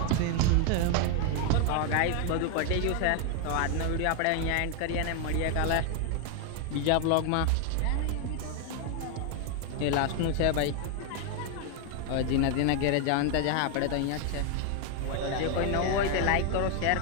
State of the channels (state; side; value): different; both; correlation 0.01